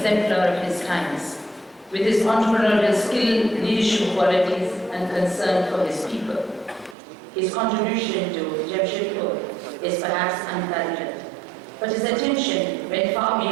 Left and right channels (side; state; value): left; drops out; at 7.0 s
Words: of his times, with his entrepreneurial skill, leadership qualities, and concern for his people. His contribution to Jamshedpur is perhaps unparalleled, but his attention went far